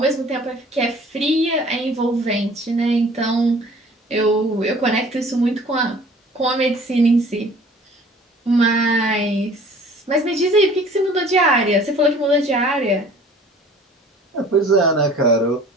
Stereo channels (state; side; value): normal; both; correlation 0.49